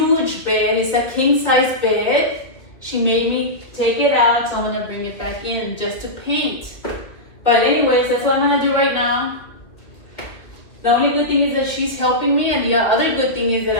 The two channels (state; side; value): late; right; 1.9 ms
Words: bed. It's a king size bed. She made me take it out, so I'm gonna bring it back in just to paint. But anyways, that's what I'm gonna do right now. The only good thing is that she's helping me, and the other good thing is that